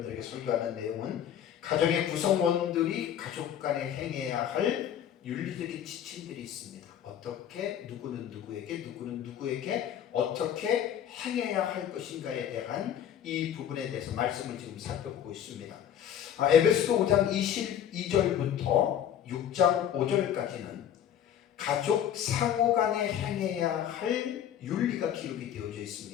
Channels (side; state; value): right; quieter; 9.7 dB